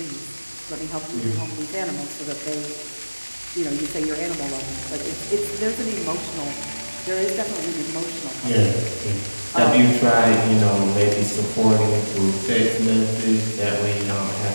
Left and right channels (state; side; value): inverted; both; correlation -1.00